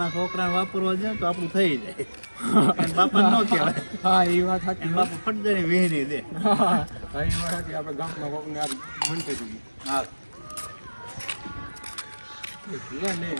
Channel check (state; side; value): inverted; both; correlation -1.00